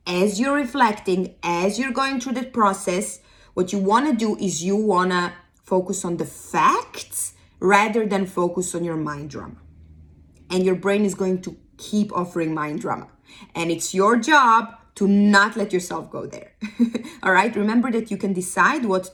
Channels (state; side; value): identical; both; correlation 1.00